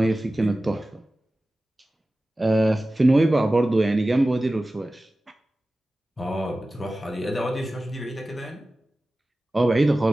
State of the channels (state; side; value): normal; both; correlation 0.96